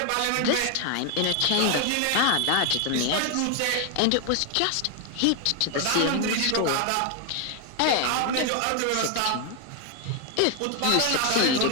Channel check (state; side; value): different; both; correlation 0.00